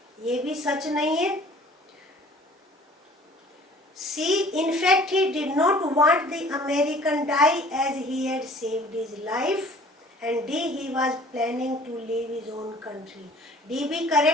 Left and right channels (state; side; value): normal; both; correlation 0.50